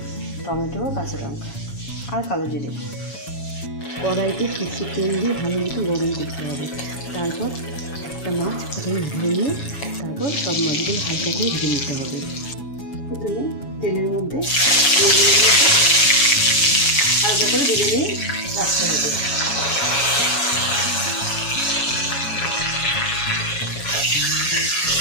টমেটো, কাঁচা লঙ্কা আর কালো জিরে। কড়াইতে কিছু তেল দিয়ে ভালো মতো গরম করতে হবে। তারপর একটা মাছ প্রথমে ধরে নিয়ে তারপর সব মাছগুলো হালকা করে ভেজে নিতে হবে। প্রথমে তেলের মধ্যে হালকা করে ভেজে নিয়ে রাখতে হবে।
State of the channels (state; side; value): late; right; 7.2 ms